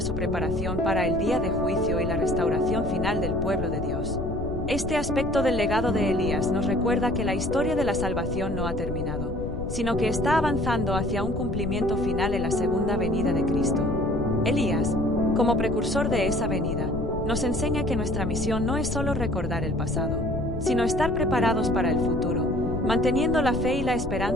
su preparación para el día de juicio y la restauración final del pueblo de Dios. Este aspecto del legado de Elías nos recuerda que la historia de la salvación no ha terminado, sino que está avanzando hacia un cumplimiento final en la segunda venida de Cristo. Elías, como precursor de esa venida, nos enseña que nuestra misión no es solo recordar el pasado, sino estar preparados para el futuro, manteniendo la fe y la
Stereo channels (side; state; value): left; noise; rumble, 6 dB below the sound